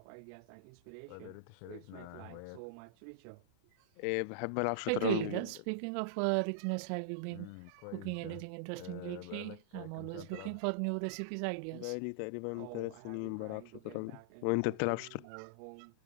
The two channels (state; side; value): different; both; correlation -0.02